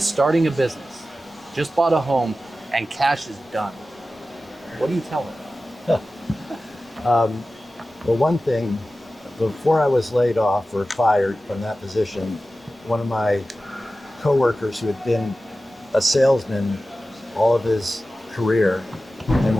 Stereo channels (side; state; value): both; normal; correlation 0.94